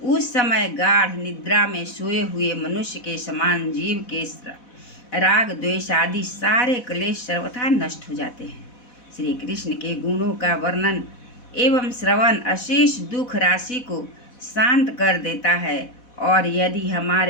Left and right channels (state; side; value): late; right; 4.1 ms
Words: उस समय गाढ़ निद्रा में सोए हुए मनुष्य के समान जीव के राग द्वेष आदि सारे क्लेश सर्वथा नष्ट हो जाते हैं। श्री कृष्ण के गुणों का वर्णन एवं श्रवण अशेष दुख राशि को शांत कर देता है, और यदि